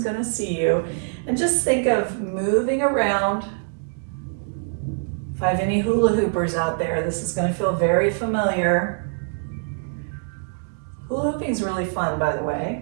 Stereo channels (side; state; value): left; silent; digital silence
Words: see you. And just think of moving around. If I have any hula hoopers out there, this is gonna feel very familiar. Hula hooping is really fun, by the